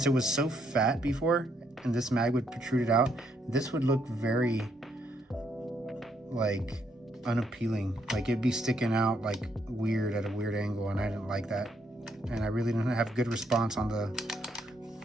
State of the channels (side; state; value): both; normal; correlation 0.73